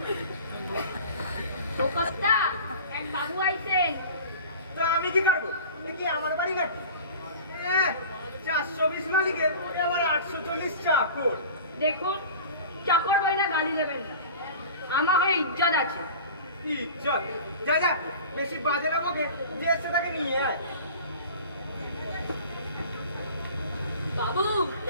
ও কর্তা, এক বাবু আইছে। তা আমি কি করবো? এ কি আমার বাড়ি নাকি? 420 মালিকের, এ আবার 840 চাকর। দেখুন, চাকর বইলা গালি দেবেন না, আমার হয়ে ইজ্জত আছে। ইজ্জত? যা যা, বেশি বাজে না বকে, যে এসে তাকে নিয়ে আয়। বাবু,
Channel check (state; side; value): inverted; both; correlation -0.39